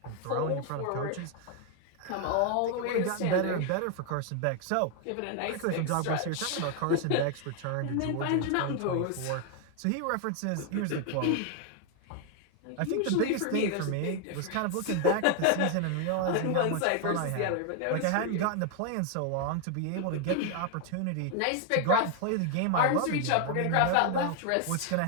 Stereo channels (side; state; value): both; different; correlation 0.00